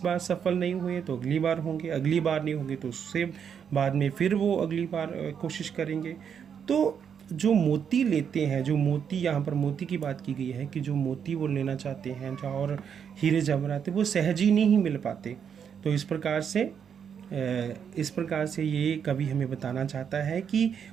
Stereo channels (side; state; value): left; quieter; 7.6 dB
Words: बार सफल नहीं हुए तो अगली बार होंगे, अगली बार नहीं होंगे तो उससे बाद में फिर वो अगली बार कोशिश करेंगे। तो जो मोती लेते हैं, जो मोती, यहाँ पर मोती की बात की गई है कि जो मोती वो लेना चाहते हैं और हीरे जवाहरात वो सहज ही नहीं मिल पाते। तो इस प्रकार से ये कवि हमें बताना चाहता है कि